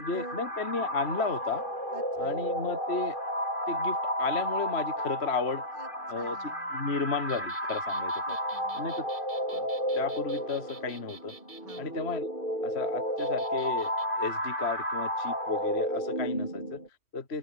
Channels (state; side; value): late; right; 2.3 ms